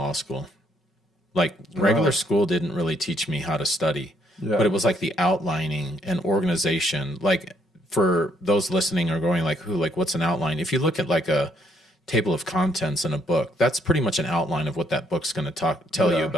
school. Like regular school didn't really teach me how to study, but it was like the outlining and organization. Like for those listening or going like, what's an outline? If you look at like a table of contents in a book, that's pretty much an outline of what that book's going to tell you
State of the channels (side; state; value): both; normal; correlation 0.69